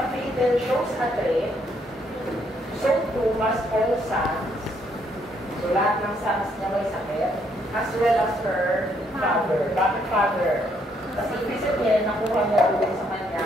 female shows a trait, so too must all sons, so lahat ng sons niya may sakit, as well as her father. Bakit father? Kasi ibig sabihin, nakuha niya ulit sa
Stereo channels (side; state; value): both; normal; correlation 0.71